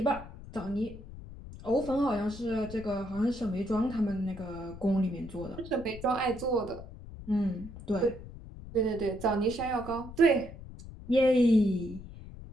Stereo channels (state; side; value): noise; left; rumble, 14 dB below the sound